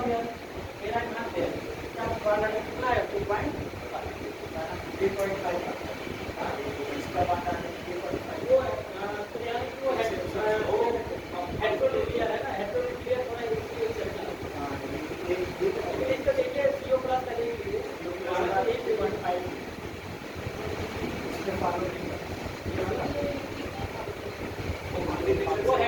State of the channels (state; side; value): identical; both; correlation 1.00